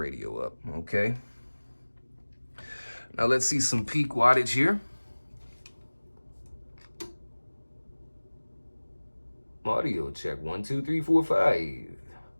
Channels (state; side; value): inverted; both; correlation -1.00